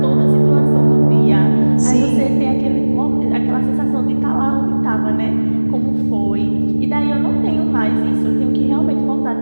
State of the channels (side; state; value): both; inverted; correlation -1.00